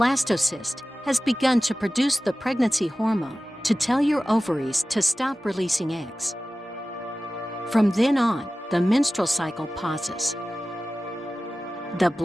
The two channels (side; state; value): both; normal; correlation 0.96